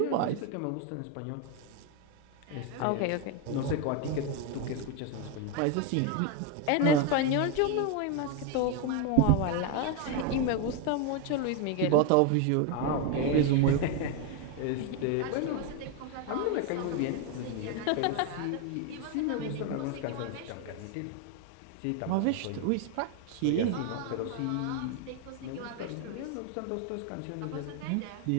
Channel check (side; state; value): both; different; correlation 0.01